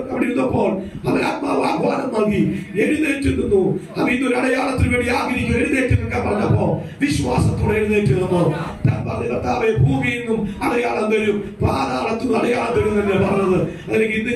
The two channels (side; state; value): both; identical; correlation 1.00